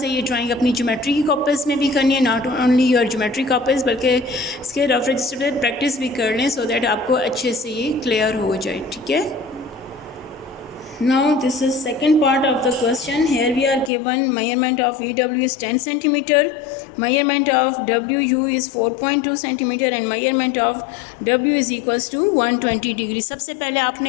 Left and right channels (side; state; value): right; drops out; at 13.9 s